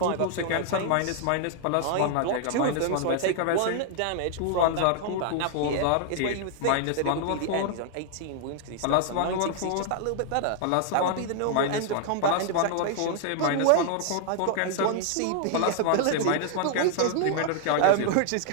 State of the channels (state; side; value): different; both; correlation 0.00